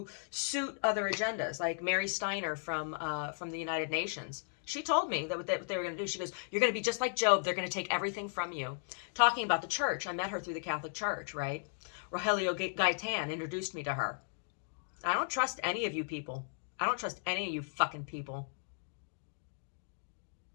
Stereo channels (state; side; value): silent; right; digital silence